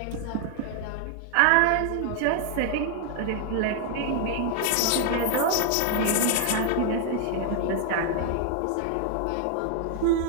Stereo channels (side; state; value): both; different; correlation 0.00